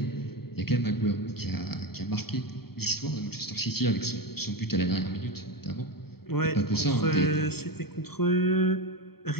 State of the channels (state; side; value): late; right; 0.95 ms